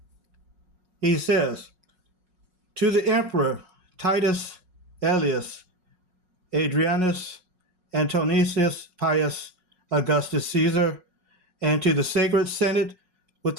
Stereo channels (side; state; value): left; late; 5.5 ms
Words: He says, to the emperor Titus Aelius Adrianus Antonicius Pius Augustus Caesar, and to the sacred senate with